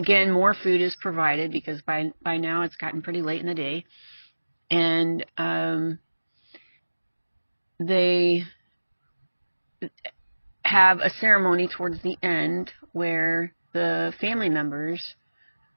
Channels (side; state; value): both; inverted; correlation -1.00